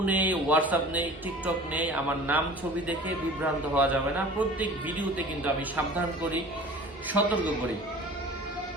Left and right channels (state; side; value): normal; both; correlation 0.42